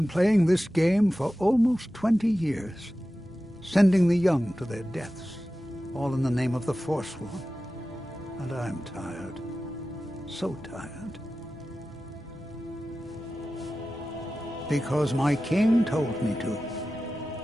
playing this game for almost 20 years, sending the young to their deaths, all in the name of the Forsworn. And I'm tired. So tired. Because my king told me to.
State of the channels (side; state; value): both; normal; correlation 0.94